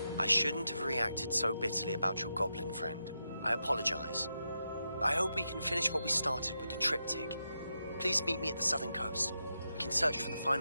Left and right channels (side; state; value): both; inverted; correlation -0.86